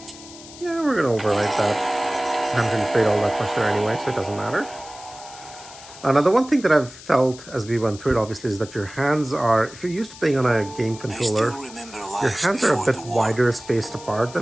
Yeah, we're gonna overwrite that. I haven't really played all that much there anyway, so it doesn't matter. Now, the one thing that I've felt as we went through it, obviously, is that your hands are, if you're used to playing on a game controller, your hands are a bit wider spaced apart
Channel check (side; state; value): left; noise; hiss, 17 dB below the sound